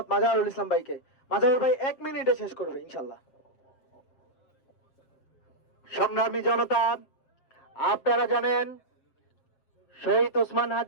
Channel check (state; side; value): late; right; 7.7 ms